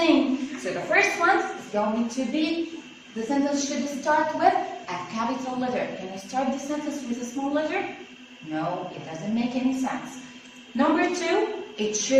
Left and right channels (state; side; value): identical; both; correlation 1.00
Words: So the first one is going to be, the sentence should start with a capital letter. Can you start the sentence with a small letter? No, it doesn't make any sense. Number 2, it